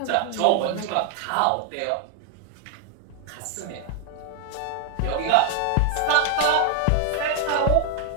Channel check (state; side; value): different; both; correlation 0.00